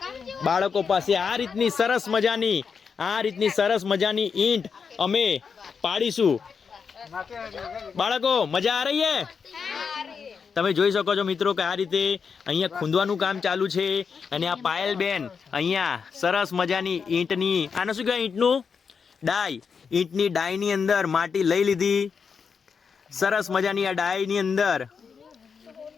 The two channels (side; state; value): right; quieter; 6.0 dB